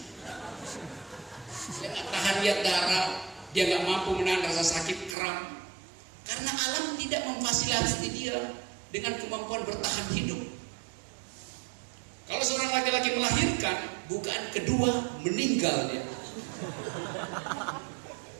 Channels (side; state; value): left; drops out; at 5.2 s